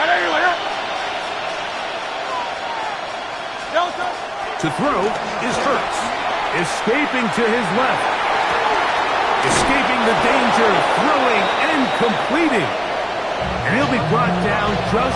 To throw is Hurts. Escaping to his left. Escaping the danger, throwing and completing. And he'll be brought down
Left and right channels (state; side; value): identical; both; correlation 1.00